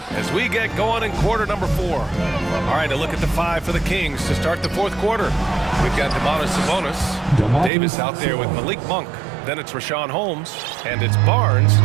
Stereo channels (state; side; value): drops out; left; at 7.7 s